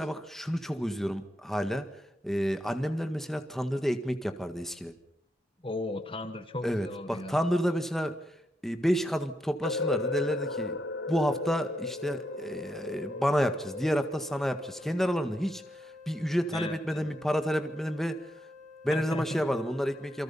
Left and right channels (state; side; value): normal; both; correlation 0.82